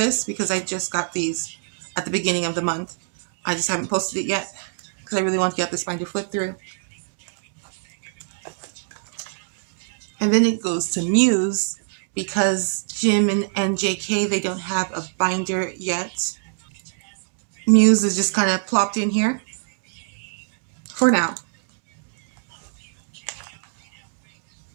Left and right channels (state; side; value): silent; left; digital silence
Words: because I just got these at the beginning of the month. I just haven't posted it yet because I really want to get this binder flip through. And then it goes to Muse because Jim and JK, they don't have a binder yet. Muse is just kind of plopped in here for now.